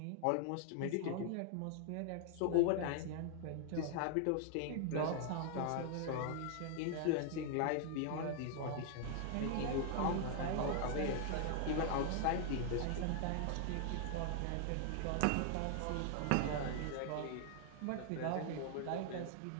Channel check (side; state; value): both; different; correlation 0.00